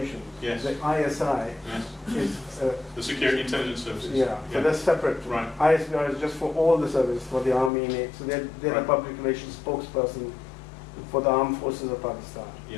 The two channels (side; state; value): right; drops out; at 7.7 s